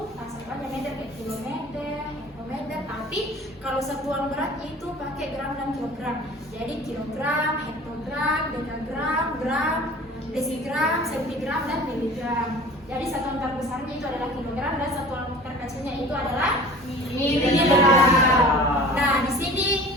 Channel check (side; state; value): both; normal; correlation 0.43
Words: satuannya meter kayak kilometer, hektometer, tapi kalau satuan berat itu pakai gram dan kilogram. Jadi kilogram, hektogram, dekagram, gram, desigram, sentigram, dan miligram. Jadi satuan terbesarnya itu adalah kilogram dan satuan terkecilnya itu adalah miligram. Nah, di sini